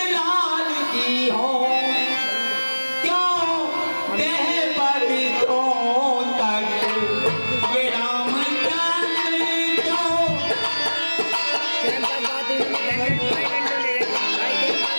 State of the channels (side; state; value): both; inverted; correlation -1.00